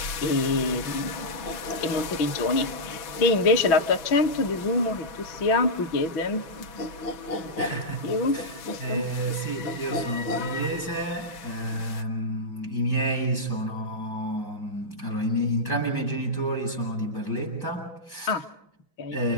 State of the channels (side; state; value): right; late; 6.0 ms